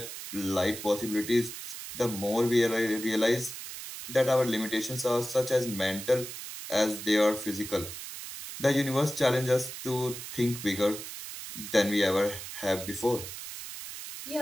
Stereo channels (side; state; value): right; noise; hiss, 9 dB below the sound